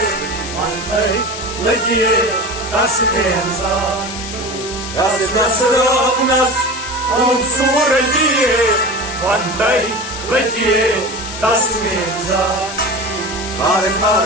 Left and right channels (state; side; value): noise; left; hiss, 9 dB below the sound